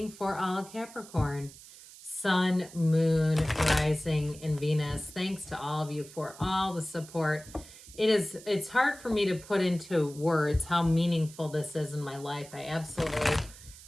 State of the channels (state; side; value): noise; right; hiss, 18 dB below the sound